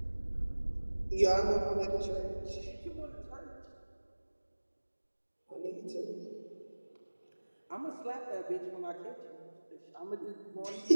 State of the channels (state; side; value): inverted; both; correlation -1.00